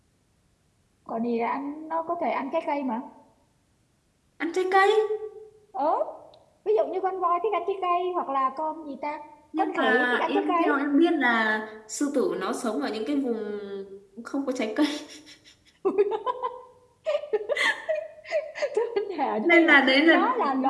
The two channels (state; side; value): identical; both; correlation 1.00